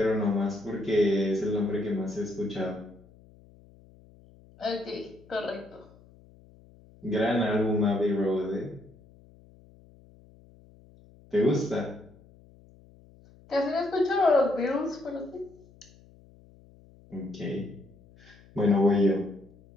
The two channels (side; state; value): left; noise; hum, 26 dB below the sound